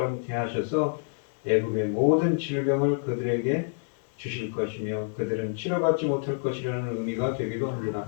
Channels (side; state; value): right; silent; digital silence